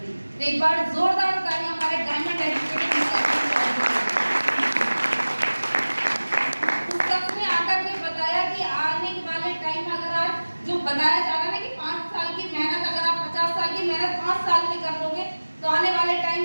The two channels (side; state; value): both; inverted; correlation -1.00